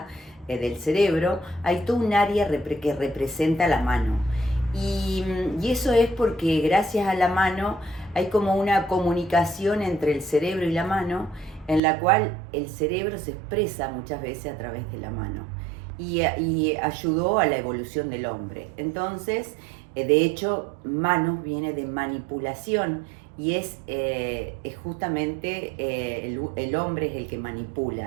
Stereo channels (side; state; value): left; drops out; at 11.8 s